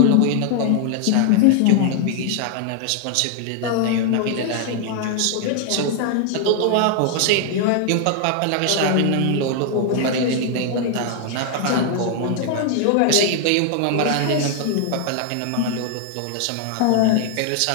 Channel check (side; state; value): both; different; correlation 0.00